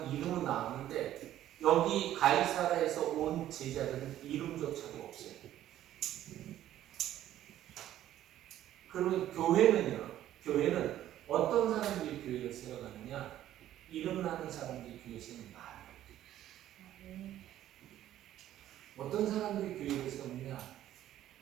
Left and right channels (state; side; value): quieter; left; 12.6 dB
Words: 이름은 나왔는데 여기 가이사라에서 온 제자들은 이름조차도 없어요. 그러면 교회는 어떤 사람들이 교회를 세워가느냐? 이름 나는 사람들이 교회 세우는 말이에요. 어떤 사람들이 교회를 세우느냐?